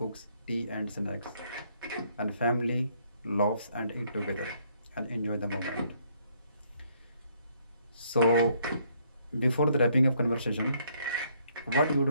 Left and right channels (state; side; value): inverted; both; correlation -0.69